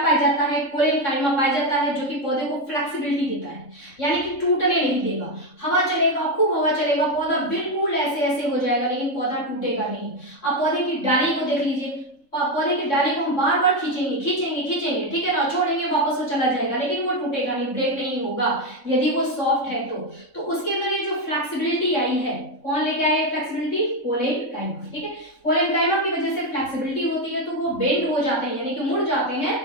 जाता है? कोलेनकाइमा पाया जाता है, जो कि पौधे को फ्लेक्सिबिलिटी देता है, यानी कि टूटने नहीं देगा। हवा चलेगा, खूब हवा चलेगा, पौधा बिल्कुल ऐसे ऐसे हो जाएगा, लेकिन पौधा टूटेगा नहीं। आप पौधे की डाली को देख लीजिए, पौधे की डाली को हम बार बार खींचेंगे खींचेंगे खींचेंगे, ठीक है ना, छोड़ेंगे वापस वो चला जाएगा, लेकिन वो टूटेगा नहीं, ब्रेक नहीं होगा, यदि वो सॉफ्ट है तो उसके अंदर ये जो फ्लेक्सिबिलिटी आई है, कौन लेके आया है फ्लेक्सिबिलिटी? कोलेनकाइमा। ठीक है, कोलेनकाइमा की वजह से फ्लेक्सिबिलिटी होती है, तो वो बेंड हो जाते हैं, यानी कि मुड़ जाते हैं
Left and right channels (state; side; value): late; right; 3.6 ms